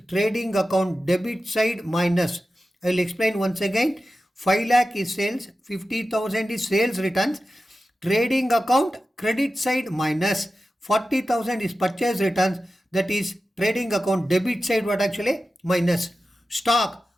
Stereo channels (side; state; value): both; normal; correlation 0.93